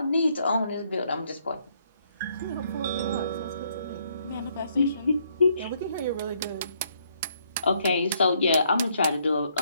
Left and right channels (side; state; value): both; inverted; correlation -0.71